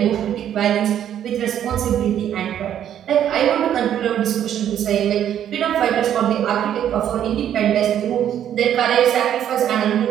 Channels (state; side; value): quieter; left; 10.3 dB